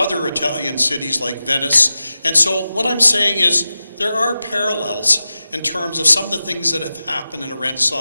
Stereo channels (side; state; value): both; inverted; correlation -0.93